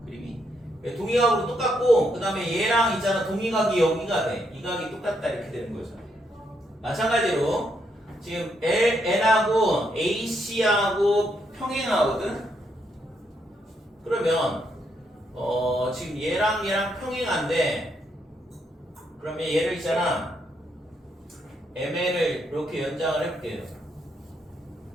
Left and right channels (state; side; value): normal; both; correlation 0.77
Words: 그림이 동의각으로 똑같고, 그 다음에 얘랑 있잖아, 동의각이 여기가 돼. 이 각이 똑같다 이렇게 되는 거죠. 마찬가지로 지금 LN하고 AC하고 평행하거든. 그러면 지금 얘랑 평행한데, 그러면 얘를 있잖아, MN을 이렇게 연장을 해볼게요.